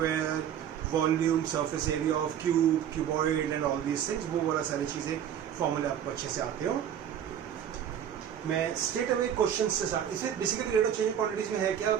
volume, surface area of cube, cuboid and all these things. वो वाला सारी चीज़ें फॉर्मूले आपको अच्छे से आते हो. मैं स्ट्रेट अवे क्वेश्चन से स्टार्ट. इसमें basically rate of change quantities में है क्या,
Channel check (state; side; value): quieter; left; 9.4 dB